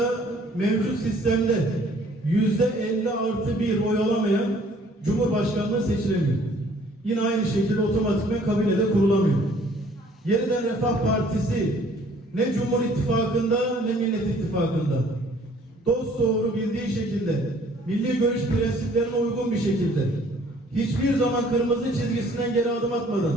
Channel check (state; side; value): normal; both; correlation 0.58